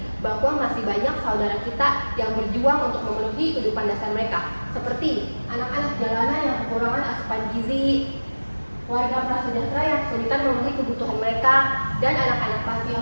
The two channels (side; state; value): both; inverted; correlation -1.00